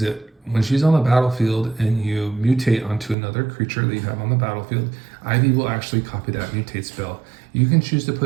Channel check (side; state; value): left; drops out; at 3.2 s